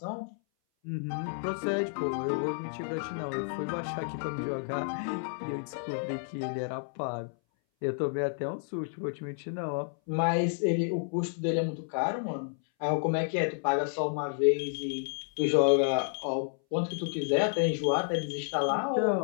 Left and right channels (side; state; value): right; silent; 57 dB below the other